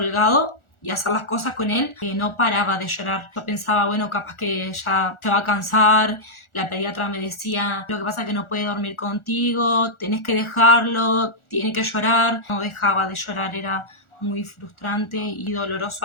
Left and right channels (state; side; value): late; right; 1.4 ms